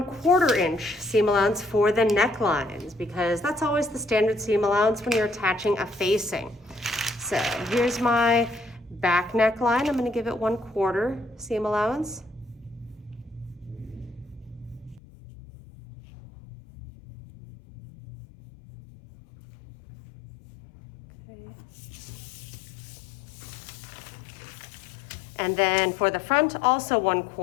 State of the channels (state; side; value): drops out; right; at 15.0 s